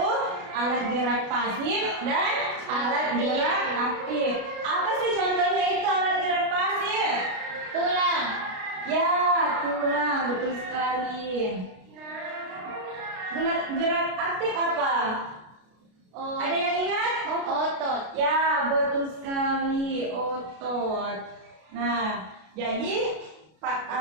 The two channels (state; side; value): late; left; 33 ms